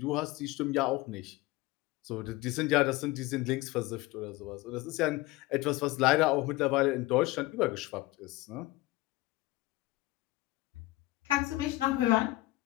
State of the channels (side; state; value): right; quieter; 19.5 dB